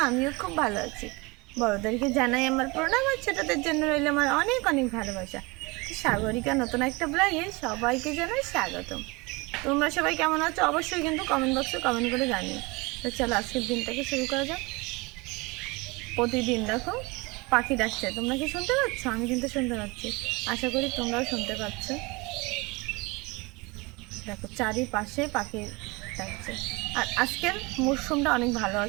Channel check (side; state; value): left; quieter; 25.6 dB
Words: আমিও খুব ভালো আছি। বড়দেরকে জানাই আমার প্রণাম, আর ছোটদের জন্য রইল আমার অনেক অনেক ভালোবাসা। তো সাগরিকা নতুন একটা ব্লগে সবাইকে জানাই স্বাগতম। তোমরা সবাই কেমন আছো অবশ্যই কিন্তু কমেন্ট বক্সে কমেন্ট করে জানিও। তো চলো আজকের দিনটাকে শুরু করা যাক। প্রতিদিন দেখো পাখি ডাকছে, তোমরা কি শুনতে পাচ্ছ? আমি কিন্তু শুনতে পাচ্ছি, আশা করি তোমরাও শুনতে পাচ্ছ। দেখো চারিপাশে পাখি ডাকছে। আর আজকের মরশুমটা অনেক ভালো